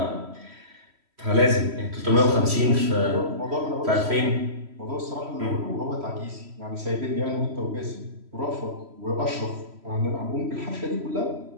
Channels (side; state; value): left; late; 3.1 ms